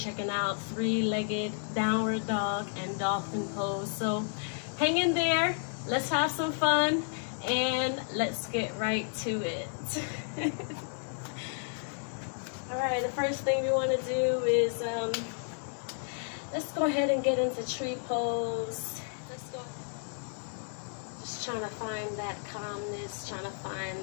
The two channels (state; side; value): silent; right; digital silence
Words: out three-legged downward dog and dolphin pose. So hang in there. Let's have some fun and let's get right to it. All right, the first thing we want to do is let's go ahead and get into tree pose. Let's go. Just trying to find that calmness, trying to